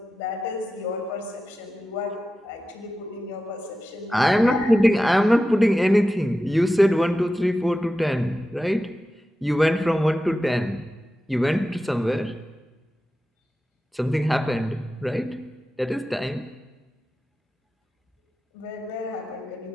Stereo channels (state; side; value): normal; both; correlation 0.93